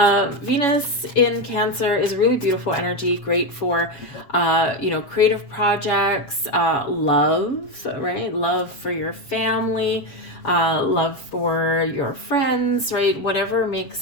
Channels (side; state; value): right; late; 7.1 ms